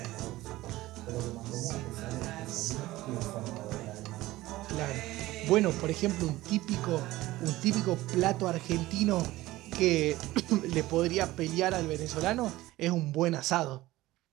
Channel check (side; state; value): left; quieter; 17.5 dB